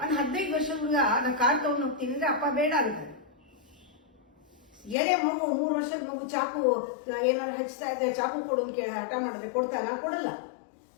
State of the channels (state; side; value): drops out; right; at 5.0 s